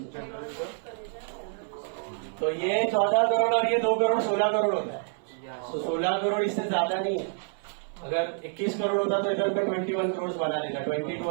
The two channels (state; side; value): silent; left; 59 dB below the other